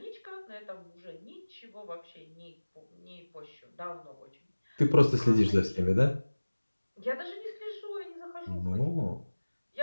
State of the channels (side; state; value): both; inverted; correlation -1.00